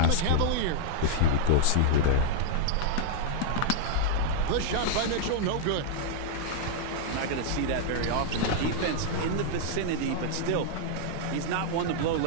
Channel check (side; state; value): both; different; correlation -0.01